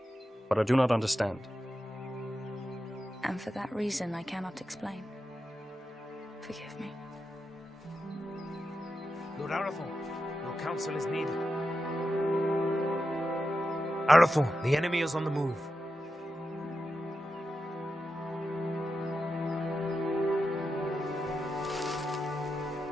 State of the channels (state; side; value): normal; both; correlation 0.89